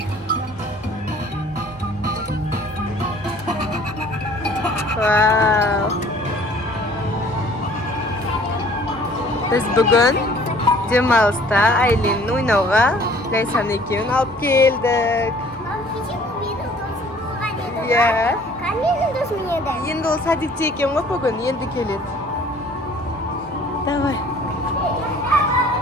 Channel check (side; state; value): both; normal; correlation 0.53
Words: Wow. Biz bugün Cemal'sta Aylin'in oynauga Laysan ekevini alıp geldik. Ya. Endi o sadikçi eken ғой bugün, endi keledi. Давай.